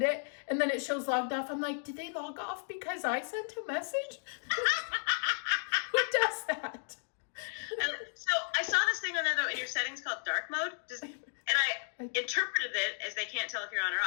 it, and then it shows logged off. I'm like, did they log off because I sent a message? Who does that? So I saw this thing on there though in your settings called dark mode. And I interpreted it as they can't tell if you're on or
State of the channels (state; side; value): silent; right; digital silence